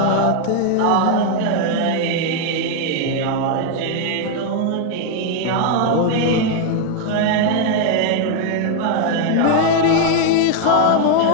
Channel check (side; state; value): both; different; correlation 0.00